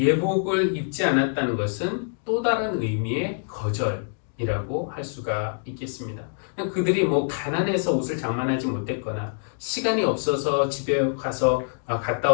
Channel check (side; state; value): right; silent; digital silence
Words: 입지 않았다는 것은 또 다른 의미의 거절이라고 할 수가 있겠습니다. 그들이 뭐 가난해서 옷을 장만하지 못했거나 시간이 없어서 집에 가서 갔다